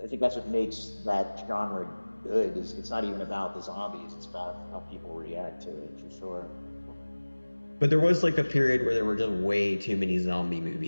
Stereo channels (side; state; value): both; inverted; correlation -1.00